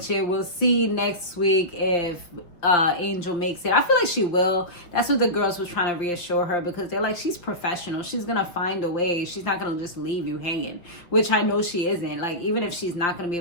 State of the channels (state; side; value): late; right; 5.8 ms